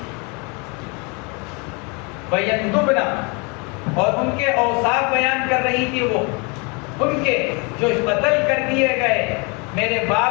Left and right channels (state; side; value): quieter; right; 31.1 dB